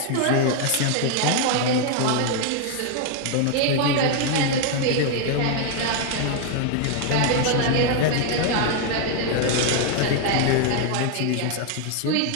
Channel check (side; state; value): both; different; correlation 0.00